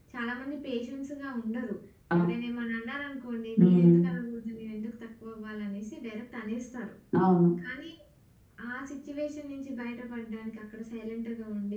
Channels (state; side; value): identical; both; correlation 1.00